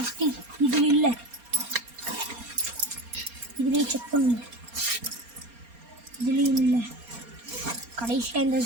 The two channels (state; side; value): late; left; 4.3 ms